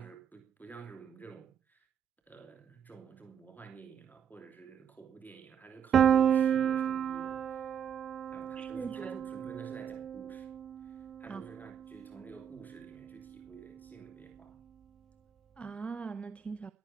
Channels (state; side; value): quieter; left; 8.4 dB